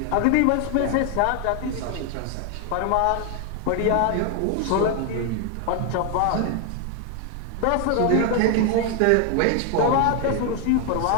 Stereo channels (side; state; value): both; different; correlation 0.00